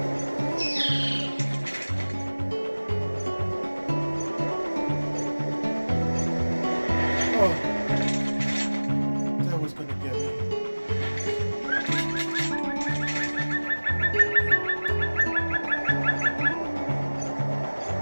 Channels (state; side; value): inverted; both; correlation -1.00